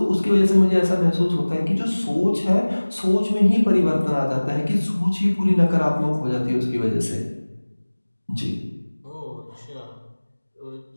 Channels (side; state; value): both; inverted; correlation -1.00